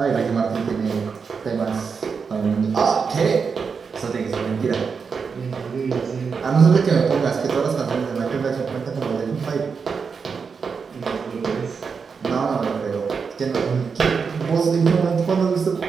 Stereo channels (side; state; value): left; quieter; 5.6 dB